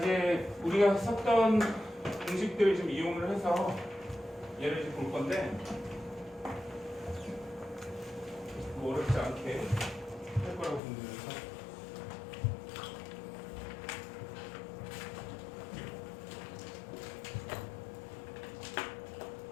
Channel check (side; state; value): right; drops out; at 10.8 s